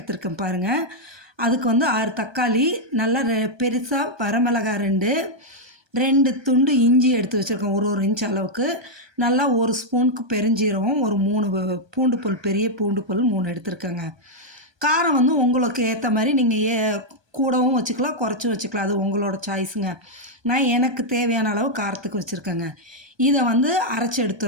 பாருங்கள். அதுக்கு 6 தக்காளி, நல்லா பெருசாக வரமிளகா 2 துண்டு இஞ்சி எடுத்து வச்சுருக்கோம், ஒரு இன்ச் அளவுக்கு. நல்லா 1 ஸ்பூனுக்கு பெருஞ்சீரகம், ஒரு 3 பூண்டு பல், பெரிய பூண்டு பல் 3 எடுத்துருக்கேங்க. காரம் உங்களுக்கு ஏற்ற மாதிரி நீங்கள் கூடவும் வச்சுக்கலாம், குறைச்சும் வச்சுக்கலாம். அது உங்களோட சாய்ஸுங்க. நான் எனக்கு தேவையான அளவு காரத்துக்கு வச்சுருக்கேங்க. இதை அரைச்சி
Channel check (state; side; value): late; left; 1.2 ms